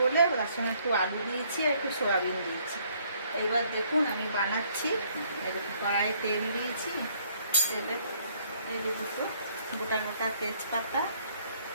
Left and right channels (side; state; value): both; inverted; correlation -0.65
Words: বলে তার সঙ্গে একটু আলু দিয়েছি আর একটু সয়াবিন দিয়েছি। এইবার দেখুন আমি বানাচ্ছি। এরকম কড়াই তেল দিয়েছি, তেলে এই যে দুটো গোটা গোটা তেজপাতা,